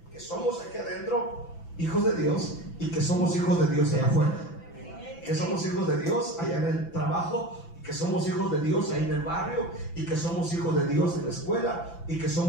que somos aquí adentro hijos de Dios y que somos hijos de Dios allá afuera. Que somos hijos de Dios allá en el trabajo, y que somos hijos de Dios ahí en el barrio, y que somos hijos de Dios en la escuela, y que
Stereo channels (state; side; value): late; right; 5.9 ms